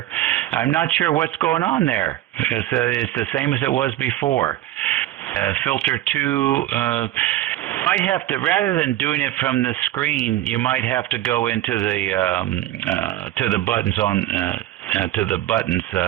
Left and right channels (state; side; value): quieter; left; 14.0 dB